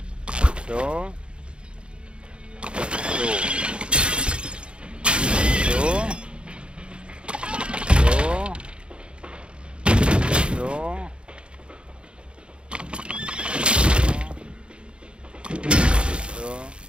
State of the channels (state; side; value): late; left; 0.056 ms